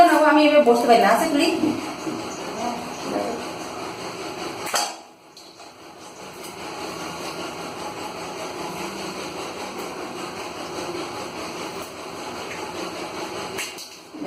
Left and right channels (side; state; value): both; identical; correlation 1.00